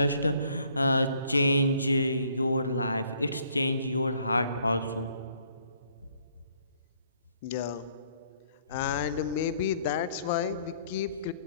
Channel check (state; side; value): inverted; both; correlation -0.64